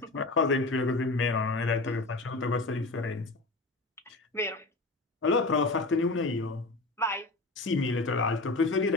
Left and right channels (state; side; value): quieter; right; 3.2 dB